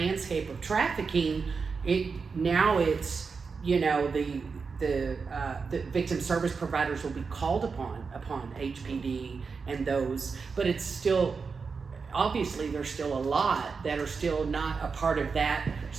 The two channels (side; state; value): left; quieter; 5.1 dB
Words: of trafficking, it's you know, the victim service providers will be called upon HPD and those, but it's still, obviously there's still a lot that are still not a part of that